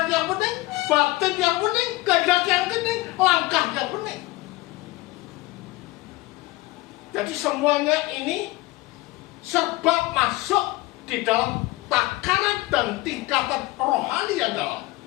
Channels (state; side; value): quieter; right; 20.3 dB